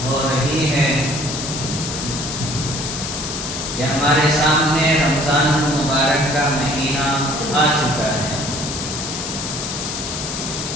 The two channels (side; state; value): left; noise; hiss, 5 dB below the sound